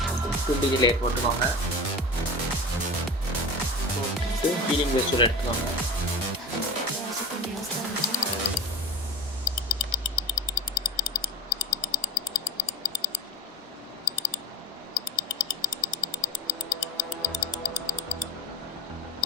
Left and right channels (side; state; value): both; normal; correlation 0.30